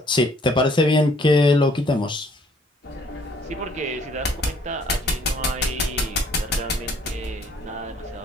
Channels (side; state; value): both; normal; correlation 0.61